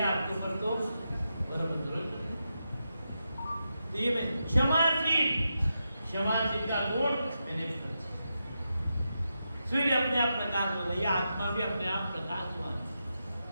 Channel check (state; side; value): inverted; both; correlation -0.87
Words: आपके ऊपर तो ये मैं क्षमाशील का गुण मैंने। सूर्य अपने आप प्रकाशवान है, आत्मा भी अपने आप प्रकाशवान है।